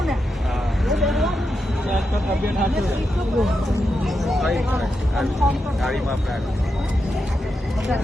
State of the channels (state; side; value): normal; both; correlation 0.86